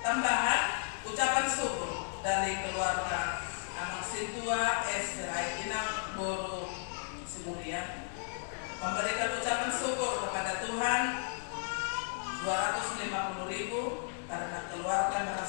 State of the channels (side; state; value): right; silent; digital silence